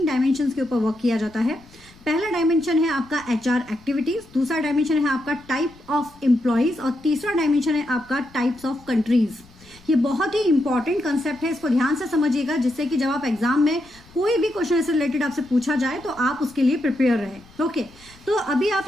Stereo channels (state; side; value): noise; left; rumble, 25 dB below the sound